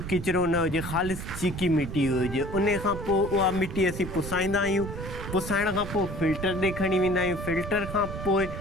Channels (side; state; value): right; noise; rumble, 8 dB below the sound